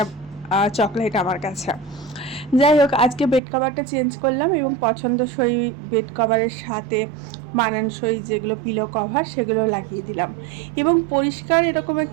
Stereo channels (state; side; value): drops out; left; at 3.4 s